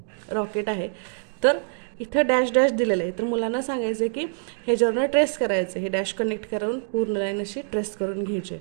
रॉकेट आहे, तर इथं डॅश डॅश दिलेलं आहे. तर मुलांना सांगायचं की ह्याच्यावरनं ट्रेस करायचं. हे डॅश कनेक्ट करून पूर्ण लाईन अशी ट्रेस करून घ्यायची.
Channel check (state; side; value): silent; left; digital silence